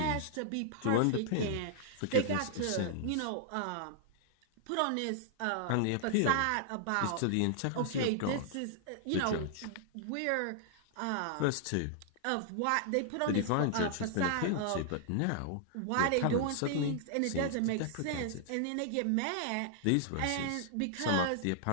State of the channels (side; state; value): both; different; correlation -0.01